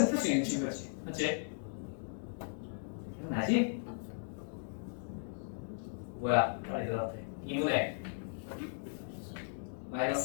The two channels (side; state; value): right; silent; digital silence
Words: 풀 수 있는 친구였지. 맞지? 기억나지? 뭐야? 빨리 대답해. 2분의 마이너스